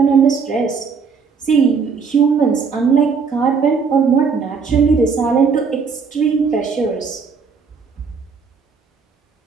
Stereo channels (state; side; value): quieter; left; 5.5 dB